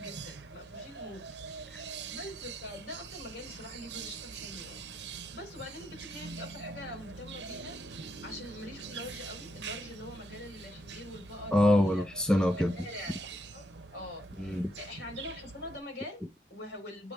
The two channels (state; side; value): normal; both; correlation 0.76